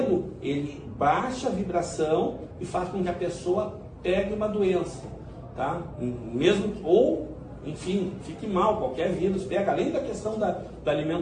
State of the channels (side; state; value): both; identical; correlation 1.00